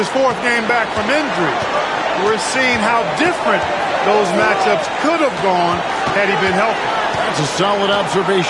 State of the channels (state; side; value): identical; both; correlation 1.00